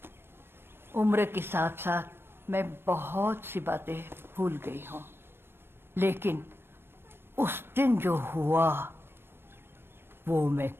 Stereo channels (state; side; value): late; left; 0.11 ms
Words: उम्र के साथ साथ मैं बहुत सी बातें भूल गई हूं, लेकिन उस दिन जो हुआ वो मैं